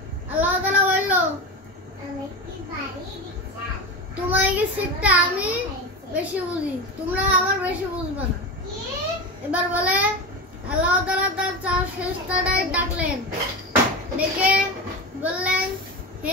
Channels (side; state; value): both; normal; correlation 0.23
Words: আল্লাহ তাআলা বলল তোমার কি সিটটা আমি বেশি বুঝি, তোমরা আমার বেশি বুঝবে না। এবার বলে আল্লাহ তাআলা তার চার ফেরেশতাদের ডাকলেন, ডেকে বললেন